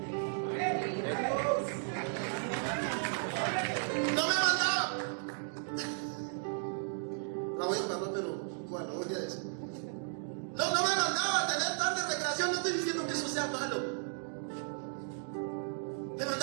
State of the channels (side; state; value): left; silent; digital silence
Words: No me mandaba. La voy a mandar, pero bueno, voy a decir. No me mandaba a tener tarde de recreación. No estoy diciendo que eso sea malo. Me